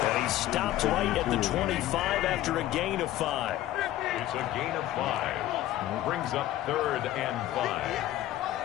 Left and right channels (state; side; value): quieter; right; 14.1 dB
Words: And he stopped right at the 25 after a gain of 5. It's a gain of 5. Brings up 3rd and 5.